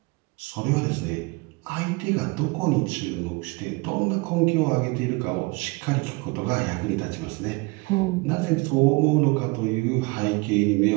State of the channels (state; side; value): quieter; left; 26.8 dB